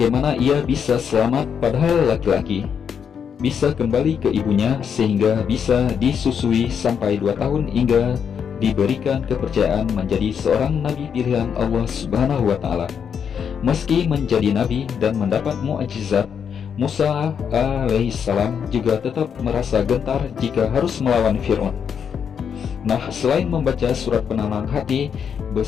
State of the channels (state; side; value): quieter; right; 7.4 dB